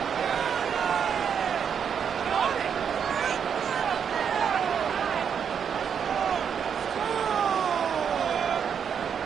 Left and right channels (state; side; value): quieter; left; 7.5 dB